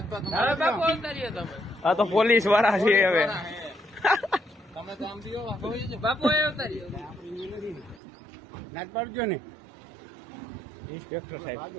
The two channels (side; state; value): left; drops out; at 8.0 s